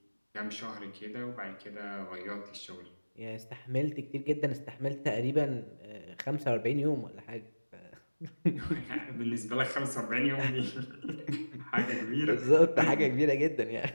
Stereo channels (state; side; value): inverted; both; correlation -1.00